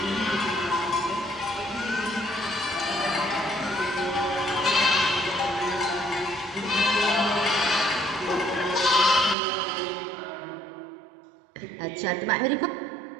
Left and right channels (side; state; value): left; drops out; at 9.3 s